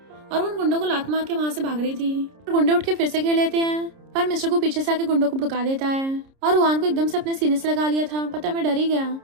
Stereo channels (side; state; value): left; late; 30 ms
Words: उन गुंडों को लात मार के वहाँ से भाग रही थी। गुंडे उठ के फिर से घेर लेते हैं, पर मिस्टर को पीछे से आके गुंडों को भड़का देता है और रुआन को एकदम से अपने सीने से लगा लिया था। पता मैं डर ही गया।